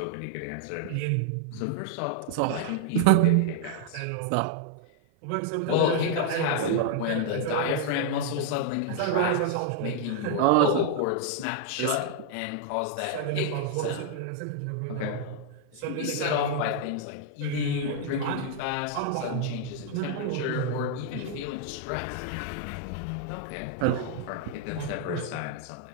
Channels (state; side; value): different; both; correlation -0.01